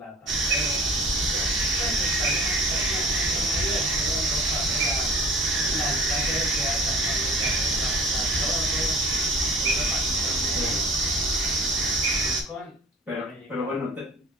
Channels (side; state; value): both; normal; correlation 0.45